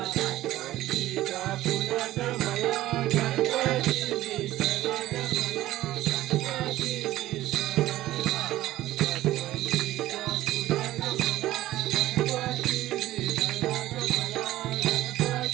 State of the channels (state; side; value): quieter; left; 15.3 dB